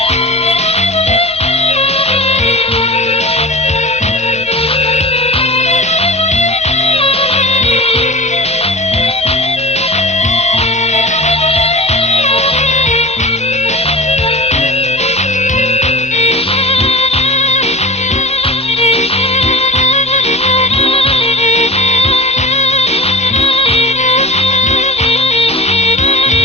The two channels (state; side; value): normal; both; correlation 0.33